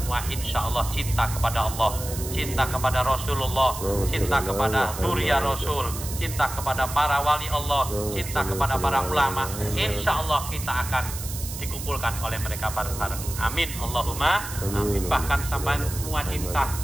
insya Allah cinta kepada Allah, cinta kepada Rasulullah, cinta kepada Nuria Rasul, cinta kepada para wali Allah, cinta kepada para ulama. Insya Allah kita akan dikumpulkan oleh mereka bareng-bareng. Amin, Allahumma amin. Bahkan sampai semua cinta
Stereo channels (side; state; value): right; noise; hiss, 9 dB below the sound